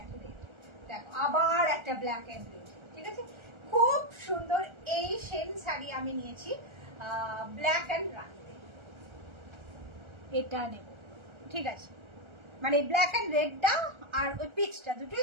রেড, দেখো আবার একটা ব্ল্যাক অ্যান্ড রেড, ঠিক আছে। খুব সুন্দর এই সেম শাড়ি আমি নিয়েছি ব্ল্যাক অ্যান্ড রানিতে, এটা নেব, ঠিক আছে। মানে ব্ল্যাক অ্যান্ড রেডটা আর ওই পিচটা দুটোই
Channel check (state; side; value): late; left; 1.3 ms